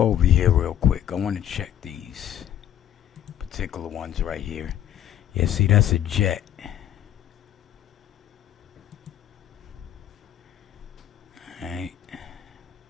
over here real quick. I want to check these particular ones right here. Yeah, see, that's a jet. Alright.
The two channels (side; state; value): right; quieter; 11.0 dB